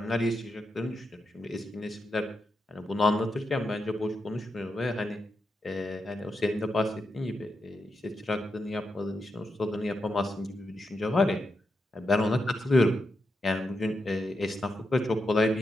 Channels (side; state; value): both; normal; correlation 0.85